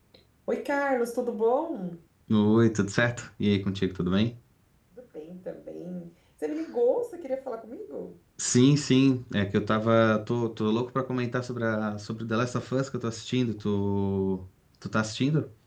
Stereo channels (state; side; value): identical; both; correlation 1.00